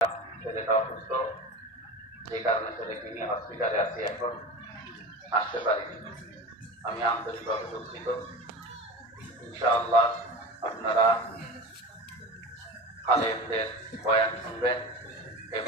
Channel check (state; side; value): normal; both; correlation 0.30